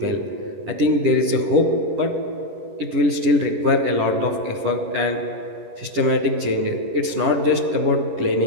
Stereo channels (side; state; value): left; late; 11 ms